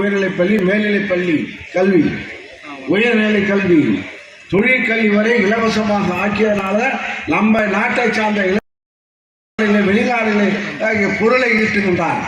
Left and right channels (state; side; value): identical; both; correlation 1.00